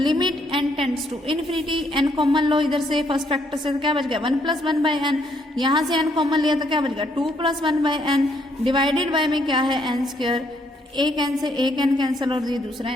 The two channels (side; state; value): both; normal; correlation 0.71